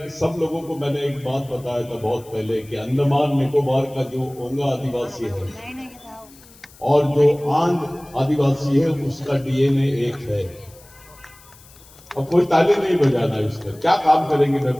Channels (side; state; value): left; noise; hiss, 24 dB below the sound